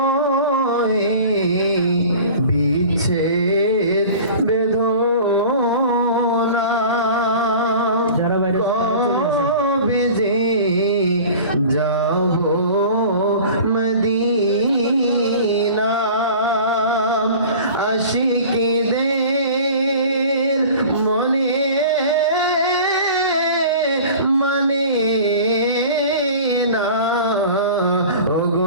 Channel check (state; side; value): inverted; both; correlation -0.41